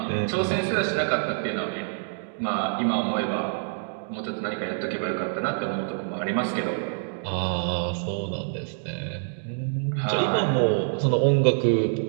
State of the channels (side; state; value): left; silent; digital silence